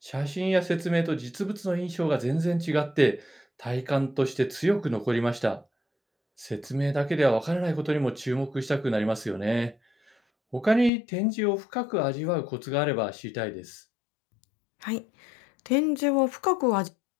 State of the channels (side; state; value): right; drops out; at 10.9 s